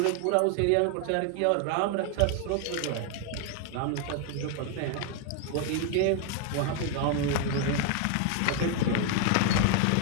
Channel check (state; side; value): different; both; correlation 0.01